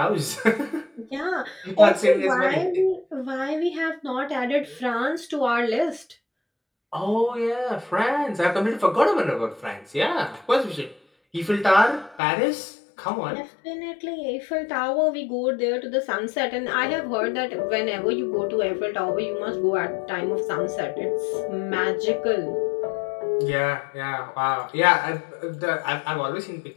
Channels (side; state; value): right; drops out; at 12.2 s